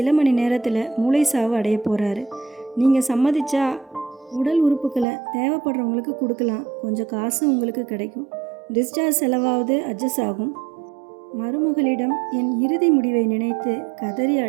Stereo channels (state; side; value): drops out; left; at 5.1 s